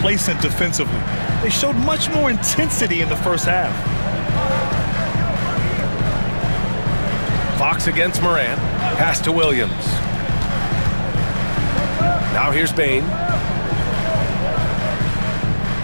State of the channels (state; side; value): inverted; both; correlation -1.00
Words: defensively. They showed much more intensity in the first half. Fox against Moran. Pass to Williams. Now here's Bane.